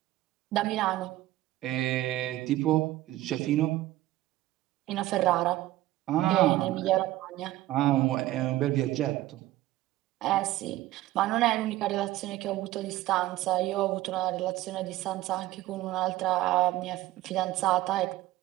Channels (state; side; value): quieter; left; 16.0 dB